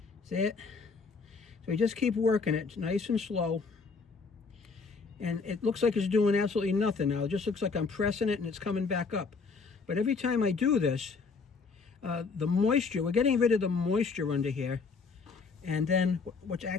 See it? So you just keep working it nice and slow. And it looks like it's doing absolutely nothing now. It just looks like I'm pressing it and it's coming back up. But every time I do this, the moisture, we're getting rid of the moisture under here. And then what's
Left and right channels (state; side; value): quieter; right; 4.7 dB